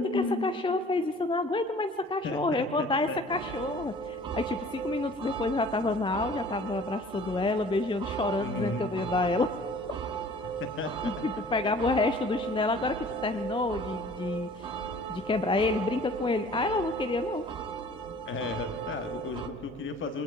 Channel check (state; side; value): normal; both; correlation 0.49